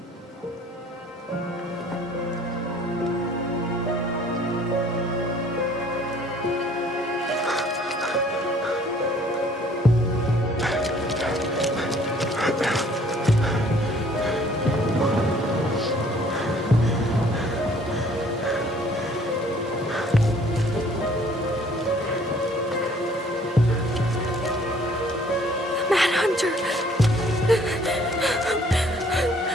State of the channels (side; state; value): both; normal; correlation 0.58